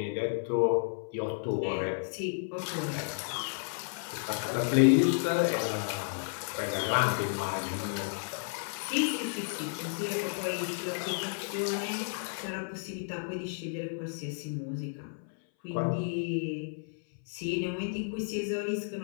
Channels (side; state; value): right; silent; 56 dB below the other